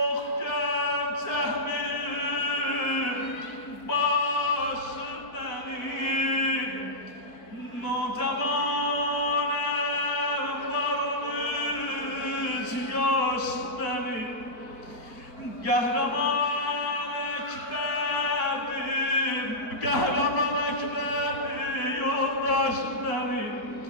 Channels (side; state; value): right; late; 4.5 ms